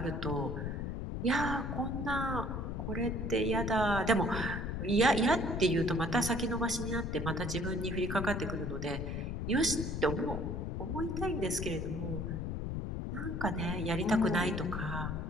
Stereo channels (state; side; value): noise; left; rumble, 3 dB below the sound